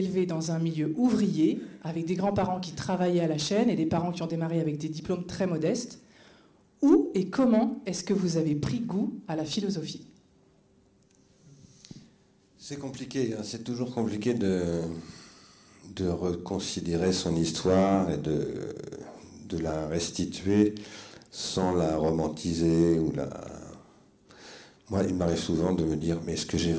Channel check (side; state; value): both; identical; correlation 1.00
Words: dans un milieu ouvrier, avec des grands-parents qui travaillaient à la chaîne et des parents qui ont démarré avec des diplômes très modestes, où et comment est-ce que vous avez pris goût à la philosophie ? C'est compliqué, hein. C'est toujours compliqué de reconsidérer son histoire et de la restituer sans la romantiser ou la... Moi, il m'arrive souvent de me dire, mais est-ce que j'ai